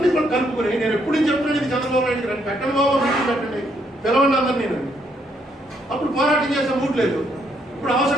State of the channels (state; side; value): normal; both; correlation 0.73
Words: కూడా కలుపుకొని నేను ఎప్పుడు చెప్తున్నాను, ఇది చంద్రబాబు నాయుడు రండి, పెట్టండి బాబు, మీటింగ్ పెట్టండి, పిలవండి అందరు. నేను అప్పుడు పోరాటం చేసే మూడ్ లేదు. ఇప్పుడు